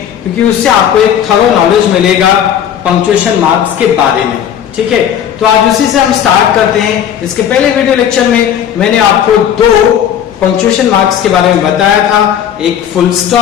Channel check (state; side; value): quieter; right; 9.4 dB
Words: क्योंकि उससे आपको एक थरो नॉलेज मिलेगा पंक्चुएशन मार्क्स के बारे में। ठीक है, तो आज उसी से हम स्टार्ट करते हैं। इसके पहले वीडियो लेक्चर में मैंने आपको दो पंक्चुएशन मार्क्स के बारे में बताया था, एक फुल